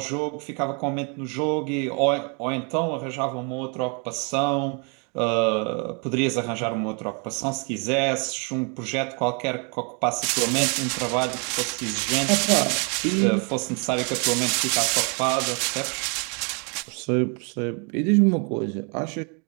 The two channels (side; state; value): left; quieter; 35.4 dB